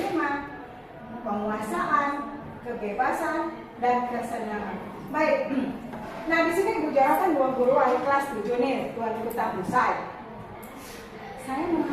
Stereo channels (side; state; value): both; identical; correlation 1.00